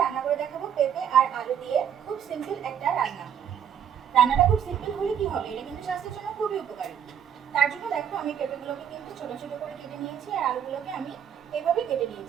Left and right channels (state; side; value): quieter; left; 8.8 dB